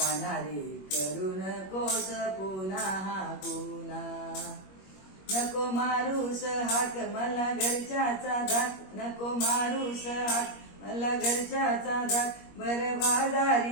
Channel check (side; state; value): right; late; 21 ms